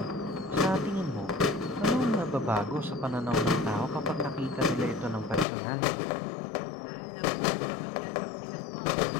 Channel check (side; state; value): right; drops out; at 5.5 s